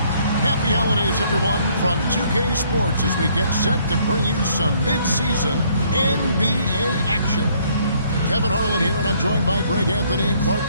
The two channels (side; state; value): both; inverted; correlation -0.64